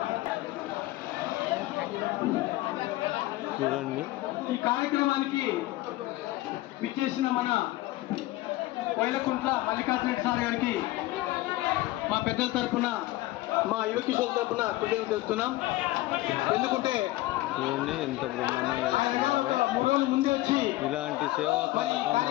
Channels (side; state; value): right; quieter; 17.9 dB